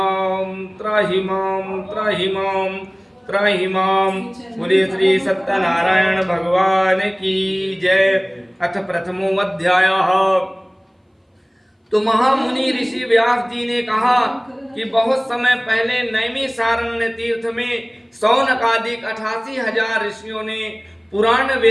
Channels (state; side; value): identical; both; correlation 1.00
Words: त्राहि मां त्राहि मां त्राहि मां। बोलिए श्री सत्यनारायण भगवान की जय। अथ प्रथमो अध्यायः। तो महामुनि ऋषि व्यास जी ने कहा कि बहुत समय पहले नैमिषारण्य तीर्थ में शौनकादिक 88,000 ऋषियों ने पुराण